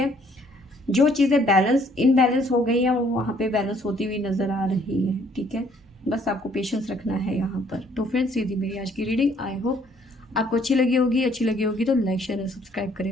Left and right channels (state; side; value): normal; both; correlation 0.63